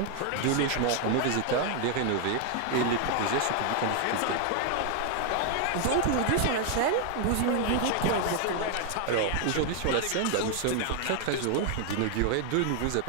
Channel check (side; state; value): both; different; correlation 0.00